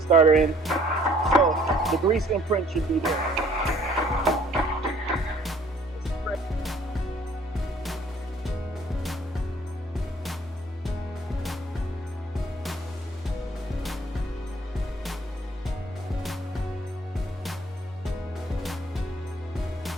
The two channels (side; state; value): both; normal; correlation 0.58